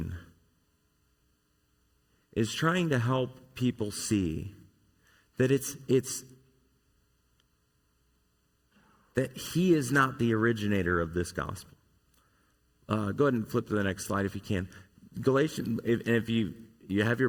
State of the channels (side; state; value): both; identical; correlation 1.00